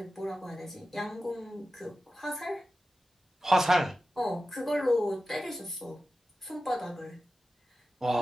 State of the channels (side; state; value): both; normal; correlation 0.94